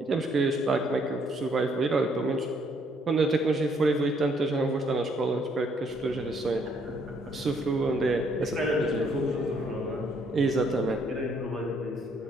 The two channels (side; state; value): both; normal; correlation 0.68